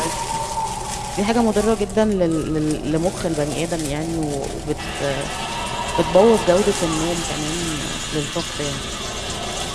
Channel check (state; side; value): identical; both; correlation 1.00